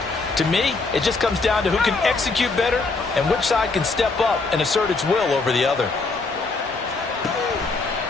To me, it just comes down to who can execute better and which side can step up and assert its will over the other.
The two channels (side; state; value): right; quieter; 3.8 dB